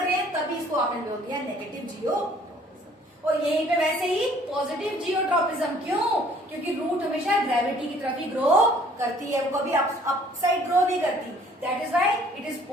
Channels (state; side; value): normal; both; correlation 0.57